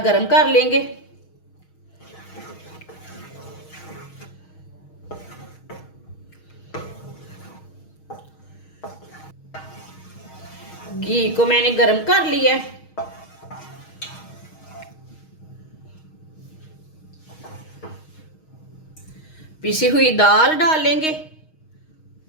गर्म कर लेंगे। घी को मैंने गर्म कर लिया है। पिसी हुई दाल डालेंगे।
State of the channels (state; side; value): late; right; 6.4 ms